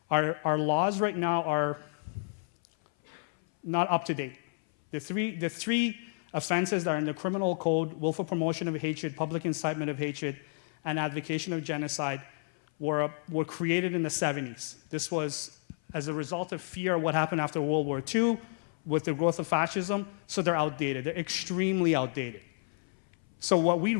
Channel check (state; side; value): silent; right; 57 dB below the other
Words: our laws right now are not up to date. The three offenses that are in the criminal code, willful promotion of hatred, public incitement of hatred, and advocation of genocide, were created in the 70s. This was as a result of fear of what happened after World War II, with the growth of fascism, so they're outdated. They're extremely outdated. So what we